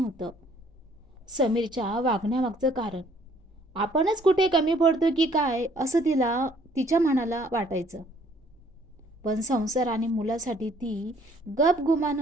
समीरच्या वागण्यामागचं कारण. आपणच कुठे कमी पडतो की काय असं तिच्या मनाला वाटायचं. पण संसार आणि मुलासाठी ती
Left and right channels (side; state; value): both; normal; correlation 0.61